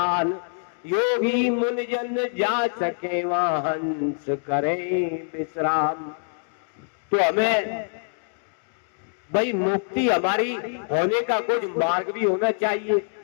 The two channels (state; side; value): silent; right; digital silence